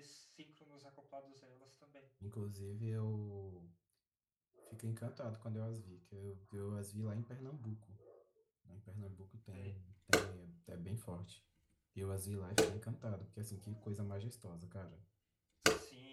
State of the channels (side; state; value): both; identical; correlation 1.00